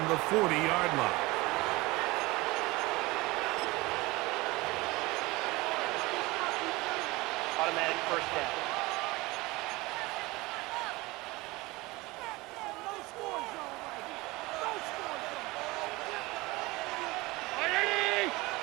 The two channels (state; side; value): quieter; left; 21.8 dB